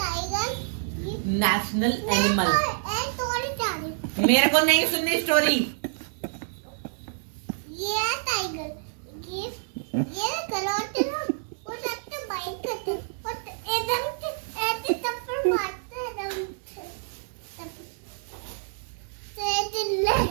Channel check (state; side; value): silent; left; digital silence